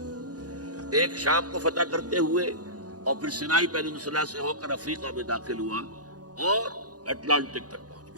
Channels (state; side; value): late; left; 0.68 ms